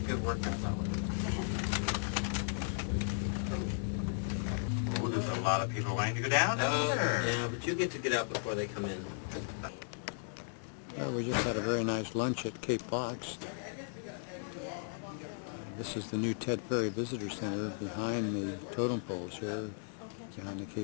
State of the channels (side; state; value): right; silent; digital silence